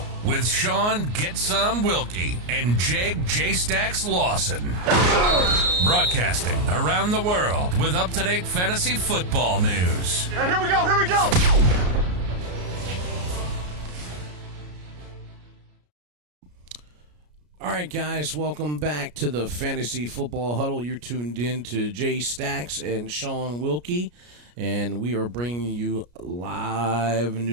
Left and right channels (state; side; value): late; left; 33 ms